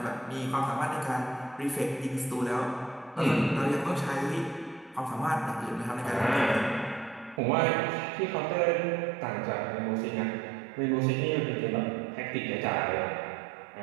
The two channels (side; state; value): left; drops out; at 7.4 s